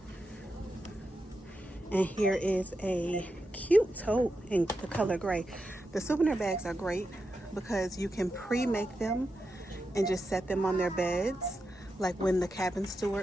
And here is a cute tote in the color gray. The souvenir bags are great because you can pre-make them and just set them on their beds. Like when the cabin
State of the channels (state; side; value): normal; both; correlation 0.88